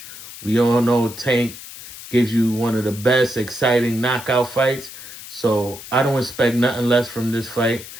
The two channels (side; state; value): left; noise; hiss, 14 dB below the sound